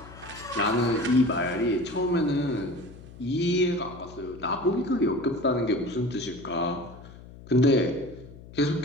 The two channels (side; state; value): left; noise; hum, 18 dB below the sound